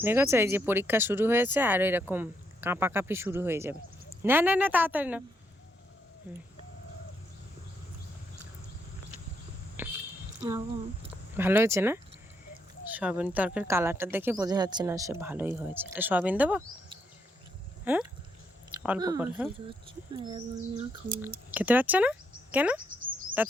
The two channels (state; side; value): normal; both; correlation 0.77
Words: দেখেছো এই যে পরীক্ষা শুরু হয়েছে, আর এরকম কাঁপাকাঁপি শুরু হয়ে যাবে। না না না তাড়াতাড়ি না। ভালো হয়েছে না? সয়াবিন তরকারির কালারটা দেখে বোঝা যাচ্ছে না সে ভালোই হয়েছে। এটা সয়াবিন দেবো? হ্যাঁ, অল্প করে। হ্যাঁ, খেতে পারছে না কেন? তা